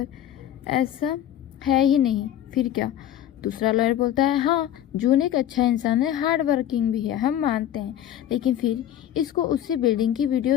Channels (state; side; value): quieter; right; 11.2 dB